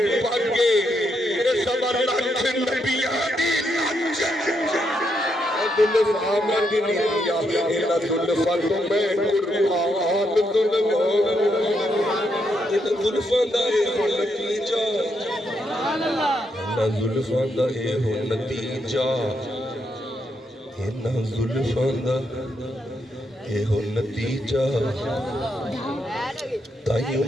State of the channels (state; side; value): normal; both; correlation 0.79